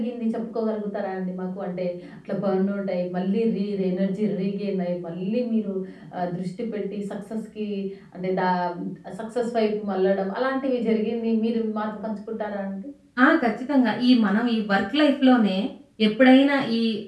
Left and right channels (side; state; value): both; identical; correlation 1.00